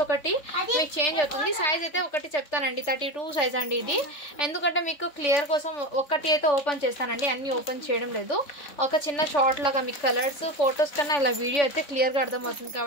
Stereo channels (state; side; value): late; right; 3.6 ms